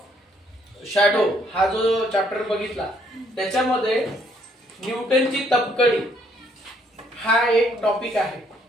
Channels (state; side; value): normal; both; correlation 0.68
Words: shadow हा जो चॅप्टर बघितला, त्याच्यामध्ये न्यूटनची तबकडी हा एक टॉपिक आहे।